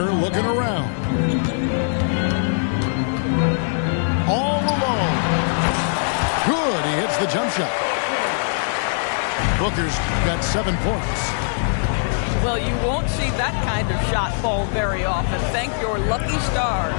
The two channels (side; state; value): right; silent; digital silence